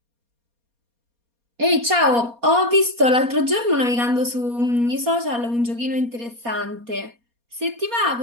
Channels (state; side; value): late; left; 4.2 ms